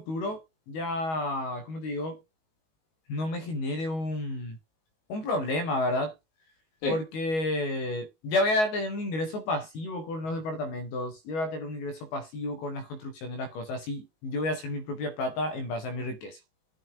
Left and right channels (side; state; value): right; late; 19 ms